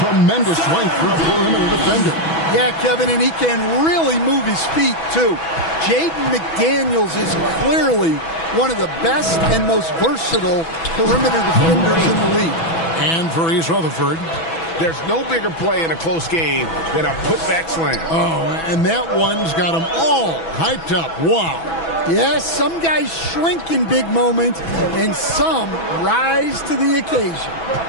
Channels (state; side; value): late; right; 6.1 ms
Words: length for a perimeter defender. Yeah, Kevin, and he can really move his feet, too. Jaden McDaniels is clearly one of the best and most versatile perimeter defenders in the league. And for East Rutherford, there's no bigger play in a close game than a putback slam. Oh, and that one's got them all hyped up. Wow. Yes, some guys shrink in big moments, and some rise to the occasion.